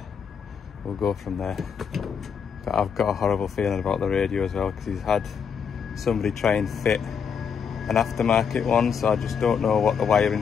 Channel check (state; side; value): quieter; right; 6.7 dB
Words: go from there. But I've got a horrible feeling about the radio as well, because he's had somebody try and fit an aftermarket one, so I just don't know what the